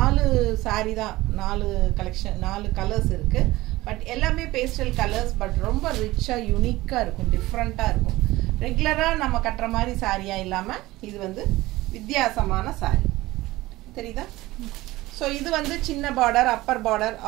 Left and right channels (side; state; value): left; quieter; 18.5 dB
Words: saree தான் 4 கலெக்ஷன் 4 கலர்ஸ் இருக்கு. பட் எல்லாமே பேஸ்டல் கலர்ஸ் பட் ரொம்ப ரிச்சா யூனிக்கா இருக்கும் டிஃபரண்டா இருக்கும். ரெகுலரா நம்ம கட்டற மாதிரி சாரியா இல்லாம இது வந்து வித்தியாசமான saree. தெரியுதா? சோ இது வந்து சின்ன border upper border